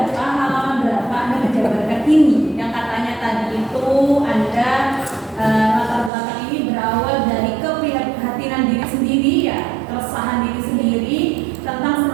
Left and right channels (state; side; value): drops out; left; at 6.1 s